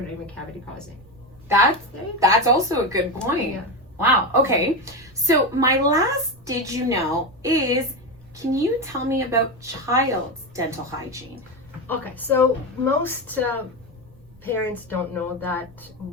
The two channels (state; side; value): noise; right; rumble, 26 dB below the sound